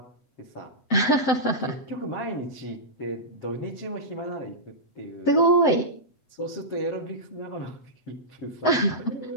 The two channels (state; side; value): late; right; 7.8 ms